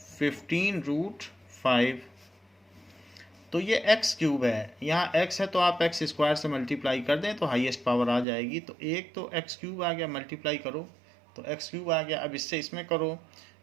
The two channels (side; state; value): left; drops out; at 8.2 s